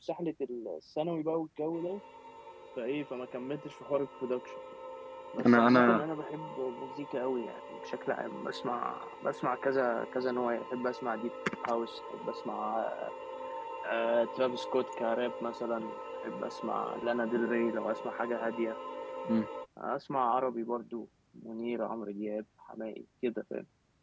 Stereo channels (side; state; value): both; identical; correlation 1.00